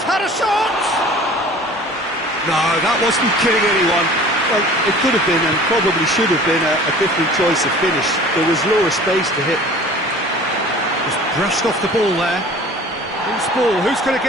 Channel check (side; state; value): both; normal; correlation 0.45